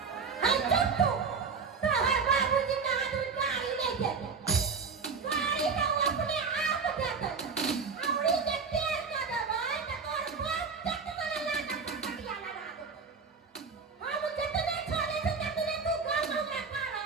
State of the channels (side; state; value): left; quieter; 5.4 dB